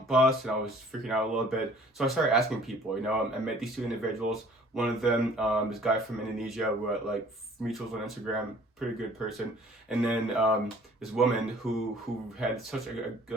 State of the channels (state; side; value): normal; both; correlation 0.53